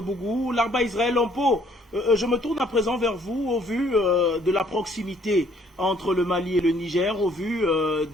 Larba Israël Lampo, je me tourne à présent vers vous au vu de la proximité entre le Mali et le Niger, au vu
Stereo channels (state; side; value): normal; both; correlation 0.62